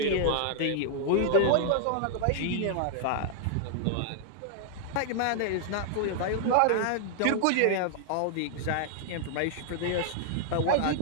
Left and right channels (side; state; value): both; different; correlation 0.00